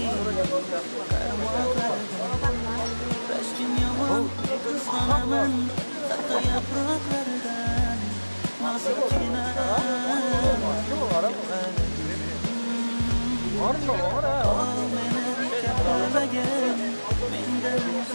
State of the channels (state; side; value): inverted; both; correlation -1.00